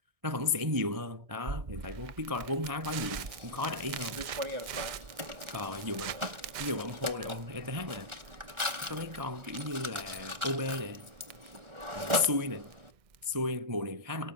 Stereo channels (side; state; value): left; late; 1.6 ms